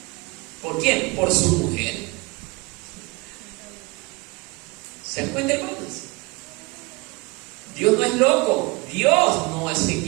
¿Por quién? Por su mujer. ¿Se dan cuenta, hermanos? Dios no es loco, Dios no se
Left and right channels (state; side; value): quieter; left; 25.9 dB